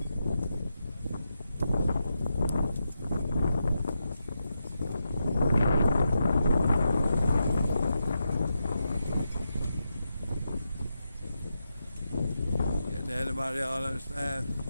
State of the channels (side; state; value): both; inverted; correlation -0.86